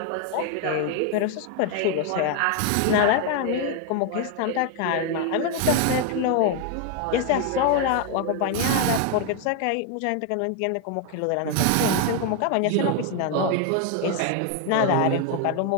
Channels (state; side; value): different; both; correlation 0.01